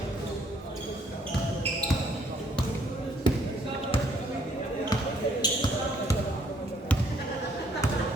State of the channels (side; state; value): both; normal; correlation 0.65